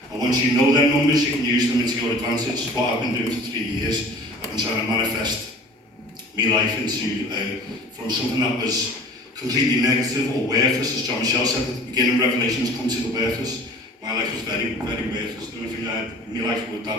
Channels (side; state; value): both; normal; correlation 0.45